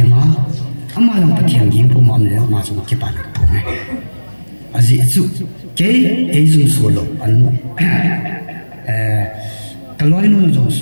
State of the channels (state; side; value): inverted; both; correlation -1.00